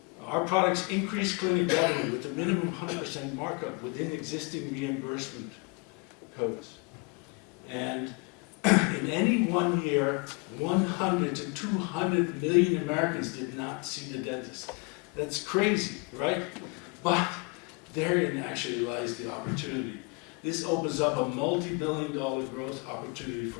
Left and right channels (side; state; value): right; quieter; 31.7 dB